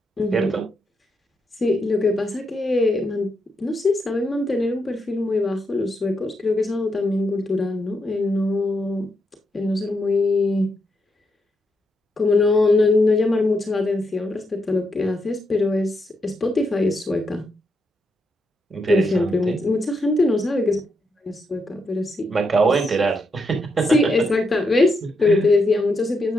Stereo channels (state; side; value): normal; both; correlation 0.81